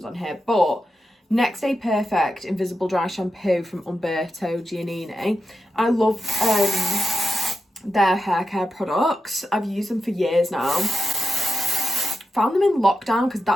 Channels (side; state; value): both; normal; correlation 0.88